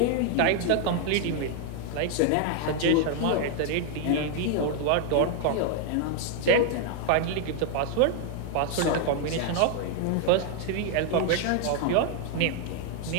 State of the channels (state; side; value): different; both; correlation 0.00